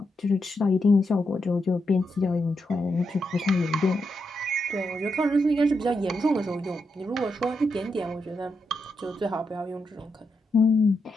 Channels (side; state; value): both; normal; correlation 0.84